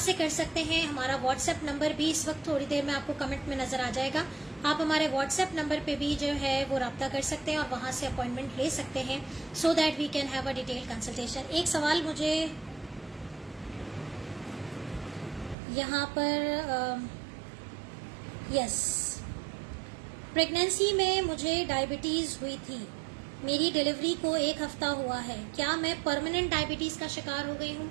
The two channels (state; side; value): drops out; left; at 15.6 s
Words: کر سکتے ہیں. ہمارا واٹس ایپ نمبر بھی اس وقت تھوڑی دیر میں آپ کو کمنٹ میں نظر آ جائے گا. آپ ہمارے واٹس ایپ نمبر پہ بھی جو ہے وہ رابطہ کر سکتے ہیں اور وہاں سے اپوائنٹمنٹ لے سکتے ہیں, so that we can have a detail consultation. ایک سوال مجھے یہاں پر, یس, پریگنینسی میں مجھے ڈائبٹیز ہوئی تھی, میری ڈیلیوری کو 1 ہفتہ ہوا ہے, کیا میں پرماننٹ ڈائبٹیز کا شکار ہو گئی ہوں؟